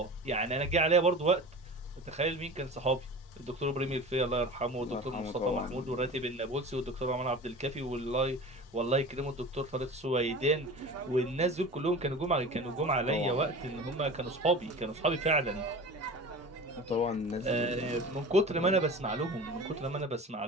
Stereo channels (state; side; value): normal; both; correlation 0.35